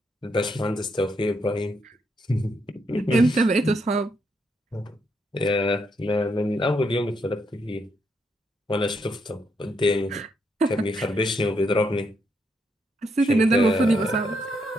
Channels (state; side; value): normal; both; correlation 0.77